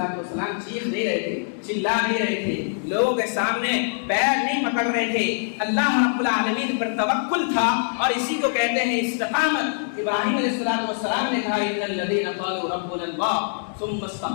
چیخ نہیں رہے تھے، چلا نہیں رہے تھے، لوگوں کے سامنے پیر نہیں پکڑ رہے تھے، اللہ رب العالمین پر توکل تھا، اور اسی کو کہتے ہیں استقامت۔ ابراہیم علیہ السلام نے کہا ان الذین قالوا ربنا اللہ ثم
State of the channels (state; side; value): silent; right; 63 dB below the other